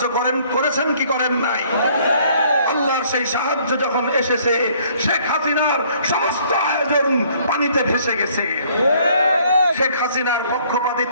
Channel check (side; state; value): both; inverted; correlation -0.61